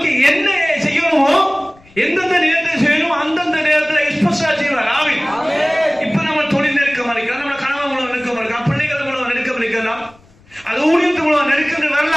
என்ன செய்யணுமோ எந்தெந்த நேரத்தில் செய்யணும் அந்தந்த நேரத்தில் ஸ்பெஷலா செய்வார். ஆமென். இப்ப நம்ம தொழில் நெருக்கமா இருக்கலாம், நம்ம கணவன் மூலம் நெருக்கமா இருக்கலாம், பிள்ளைகள் மூலம் நெருக்கம் இருக்கலாம், அது ஊழியத்து மூலம் நெருக்கம்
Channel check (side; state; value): left; noise; rumble, 28 dB below the sound